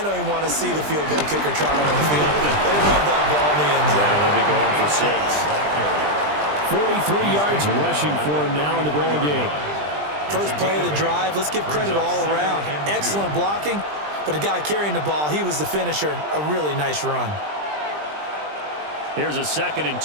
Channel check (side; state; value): left; late; 20 ms